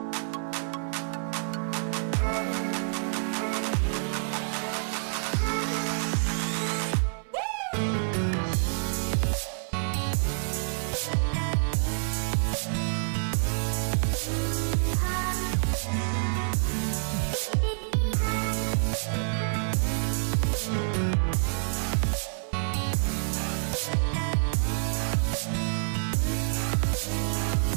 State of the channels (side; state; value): left; silent; 59 dB below the other